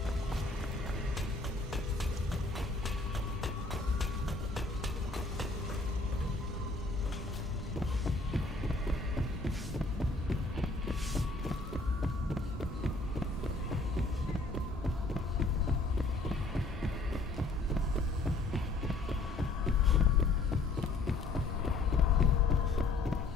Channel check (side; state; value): right; quieter; 3.4 dB